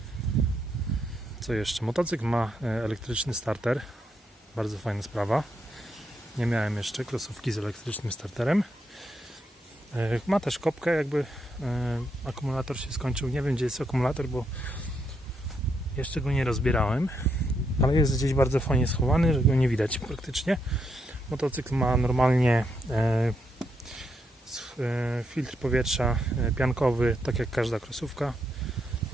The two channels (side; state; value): both; normal; correlation 0.79